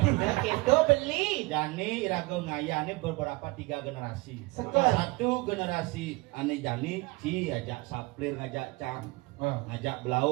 Kita beli. Jani irago ngayane beberapa 3 generasi. Sekel. Satu generasi ane Jani Ci ajak Saplir ngajak Cam. Ngajak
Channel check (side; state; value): left; quieter; 23.8 dB